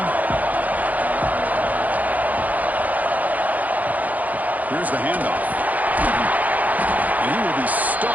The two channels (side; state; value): left; late; 0.079 ms